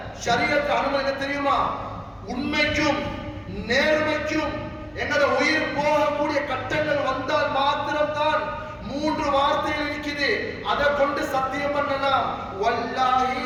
ஷரியத் அனுமதி தெரியுமா? உண்மைக்கும் நேர்மைக்கும் எங்களோட உயிர் போகக்கூடிய கட்டங்கள் வந்தால் மாத்திரம்தான் 3 வார்த்தைகள் இருக்குது, அதை கொண்டு சத்தியம் பண்ணலாம். வல்லாஹி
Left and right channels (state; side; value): identical; both; correlation 1.00